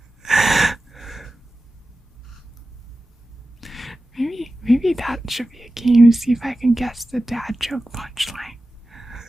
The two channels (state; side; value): normal; both; correlation 0.95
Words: Maybe that should be a game. See if I can guess the dad joke punchline.